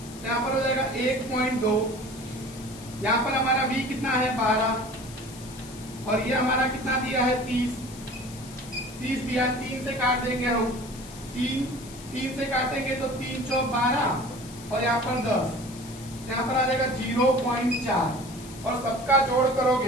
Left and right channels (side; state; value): left; noise; hiss, 17 dB below the sound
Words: यहाँ पर हो जाएगा 1.2। यहाँ पर हमारा V कितना है 12 और ये हमारा कितना दिया है 30 दिया, 3 से काट देंगे हम तीन से काटेंगे तो 3 चौक 12 और यहाँ पर 10, यहाँ पर आ जाएगा 0.4 और सबका जोड़